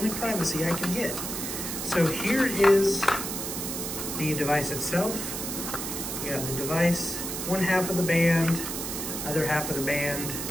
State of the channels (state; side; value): noise; right; hiss, 5 dB below the sound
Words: privacy I can get. So here is the device itself. You got the device, one half of the band, other half of the band.